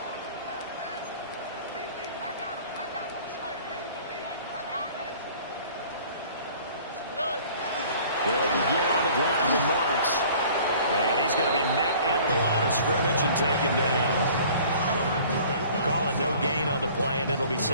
They'll begin on the ground with Marks. And he's going to be met at the line of scrimmage and taken down. Calling no gain on the play, and it'll be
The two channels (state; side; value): inverted; both; correlation -0.50